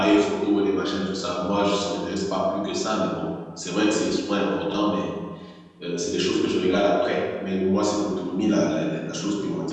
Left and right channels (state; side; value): identical; both; correlation 1.00